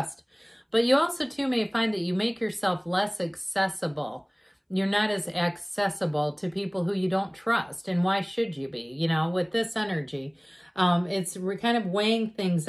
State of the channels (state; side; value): identical; both; correlation 1.00